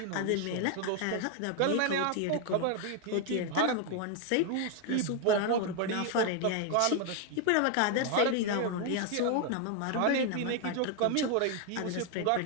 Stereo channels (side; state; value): both; different; correlation 0.01